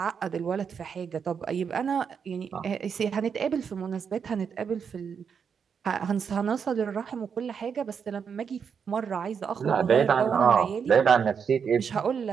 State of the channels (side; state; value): left; quieter; 6.7 dB